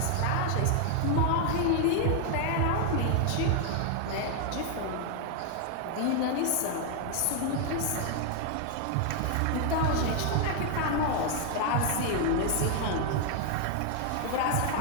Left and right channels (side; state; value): both; different; correlation 0.00